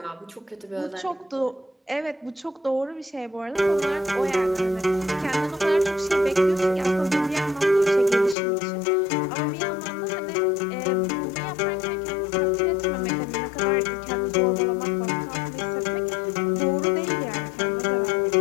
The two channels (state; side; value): drops out; right; at 8.3 s